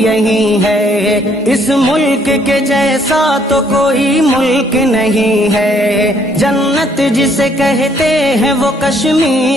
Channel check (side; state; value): both; normal; correlation 0.66